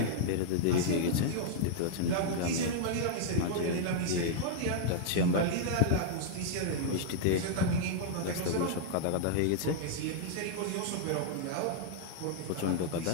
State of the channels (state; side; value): different; both; correlation -0.01